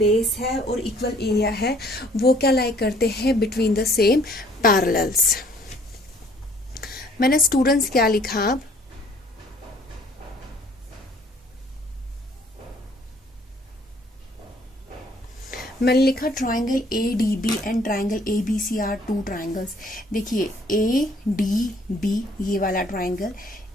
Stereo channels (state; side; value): normal; both; correlation 0.59